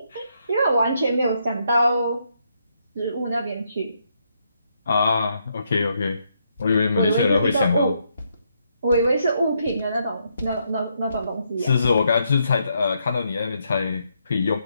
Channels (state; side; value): inverted; both; correlation -0.77